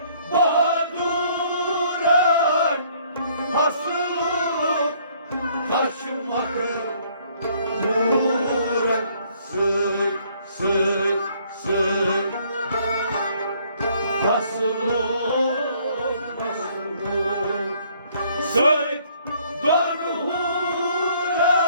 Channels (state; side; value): inverted; both; correlation -0.63